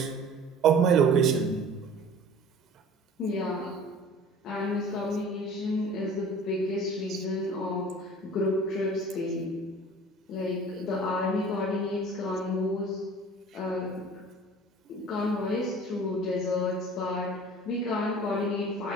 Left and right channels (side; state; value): both; normal; correlation 0.44